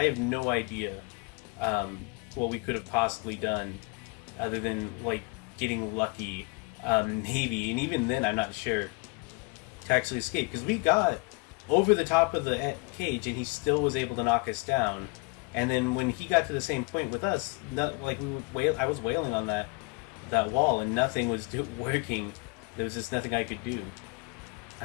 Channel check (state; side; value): quieter; right; 29.1 dB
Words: have no idea what we could have possibly done other than like getting lucky, maybe, and even then I'm not sure, to actually escape, because we got over the top of the cage and he still was able to knock us down. And then when he got to the same point with us, I was wailing on that wall and nothing was working. There was just nothing I could do.